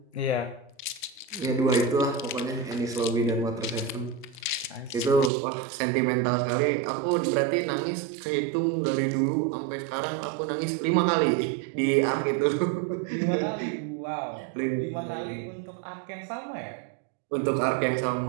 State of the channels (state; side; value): drops out; left; at 5.3 s